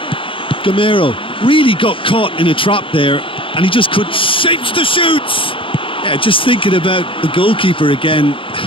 really got caught in a trap there, and he just couldn't... Shapes to shoot! Yeah, just thinking about the goalkeeper again,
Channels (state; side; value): late; right; 0.25 ms